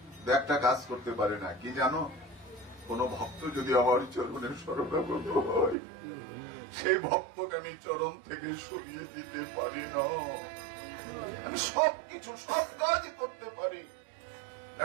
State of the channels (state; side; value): drops out; left; at 5.8 s